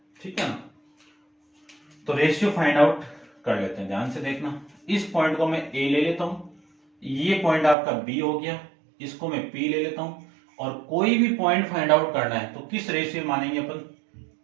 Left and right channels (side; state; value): left; drops out; at 7.8 s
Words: ठीक है ना, तो रेशियो फाइंड आउट कर लेते हैं, ध्यान से देखना। इस पॉइंट को मैं ए ले लेता हूं, ये पॉइंट आपका बी हो गया, इसको मैं पी ले लेता हूं, और कोई भी पॉइंट फाइंड आउट करना है तो किस रेशियो मानेंगे अपन?